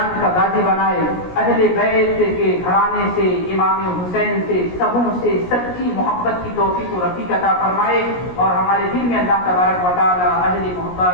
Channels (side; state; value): right; late; 17 ms